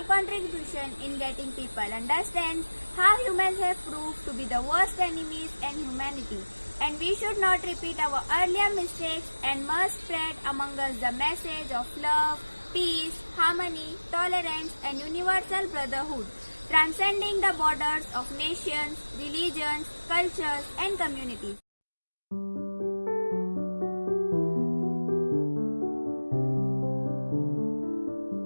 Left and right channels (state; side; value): inverted; both; correlation -1.00